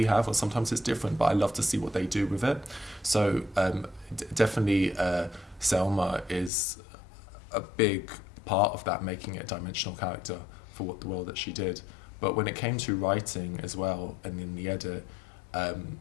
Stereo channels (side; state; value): right; drops out; at 6.5 s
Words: have, or sometimes it's different, but I love to see what they do with it. So definitely Selma is a big part of that, making it a dimensional character for what the role that she did. But when it came to writing as well, and in the edit,